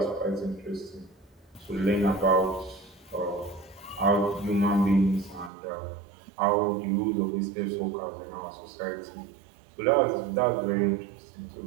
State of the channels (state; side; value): drops out; left; at 5.5 s